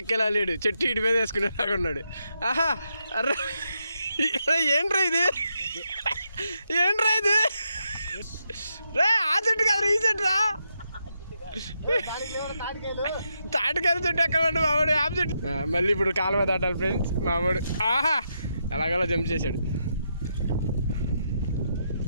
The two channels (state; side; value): inverted; both; correlation -0.82